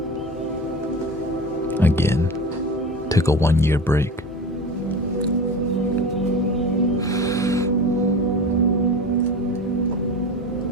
Again, took a 1-year break.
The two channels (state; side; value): normal; both; correlation 0.30